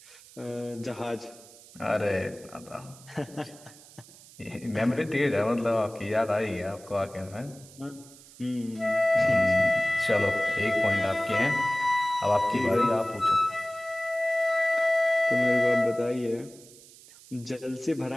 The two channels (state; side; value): noise; right; hiss, 22 dB below the sound